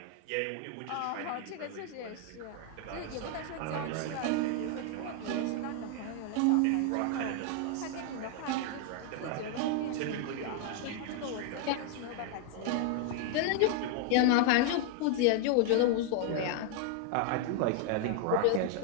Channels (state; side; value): different; both; correlation 0.00